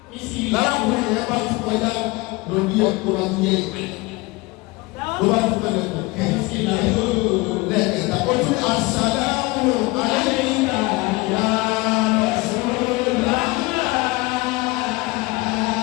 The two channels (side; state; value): right; quieter; 23.0 dB